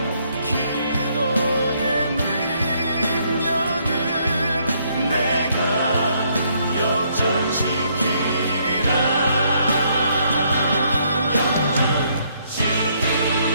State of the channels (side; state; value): both; inverted; correlation -0.70